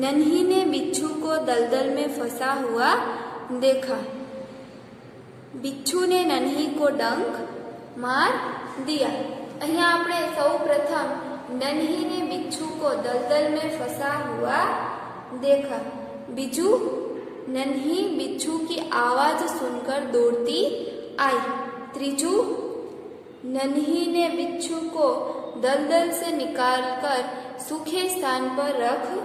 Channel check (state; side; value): identical; both; correlation 1.00